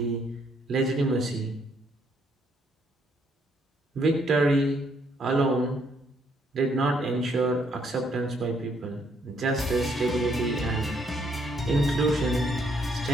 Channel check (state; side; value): normal; both; correlation 0.71